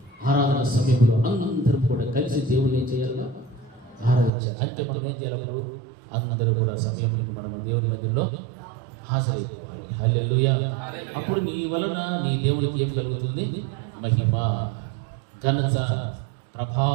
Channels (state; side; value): drops out; left; at 4.3 s